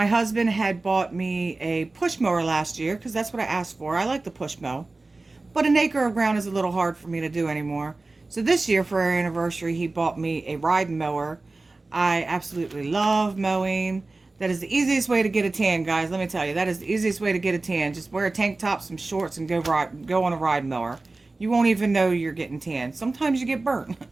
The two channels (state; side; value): quieter; left; 3.3 dB